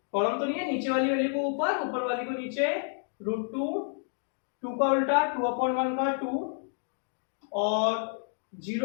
कॉलम तो नहीं है, नीचे वाली वैल्यू को ऊपर, ऊपर वाली को नीचे, √2। 2 का उल्टा 2/1 का 2 और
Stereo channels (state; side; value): silent; right; 58 dB below the other